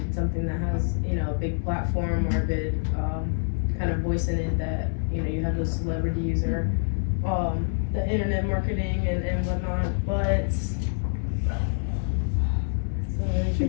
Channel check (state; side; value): silent; right; digital silence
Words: something that has, a big platform or a big kind of voice in it that, you have those celebrities or the internet marketing and whatnot. But it's a really